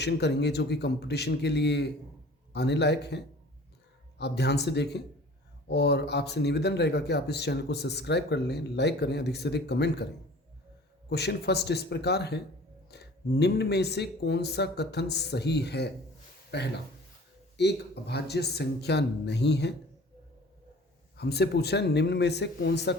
करेंगे जो कि कंपटीशन के लिए आने लायक हैं। आप ध्यान से देखें और आपसे निवेदन रहेगा कि आप इस चैनल को सब्सक्राइब कर लें, लाइक करें, अधिक से अधिक कमेंट करें। क्वेश्चन फर्स्ट इस प्रकार है, निम्न में से कौन सा कथन सही है? पहला, एक अभाज्य संख्या नहीं है। हमसे पूछा है निम्न में से कौन सा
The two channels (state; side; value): normal; both; correlation 0.46